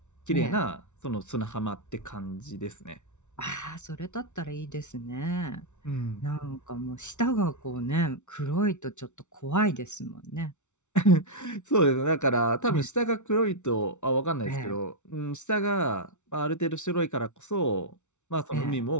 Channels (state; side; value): late; right; 0.83 ms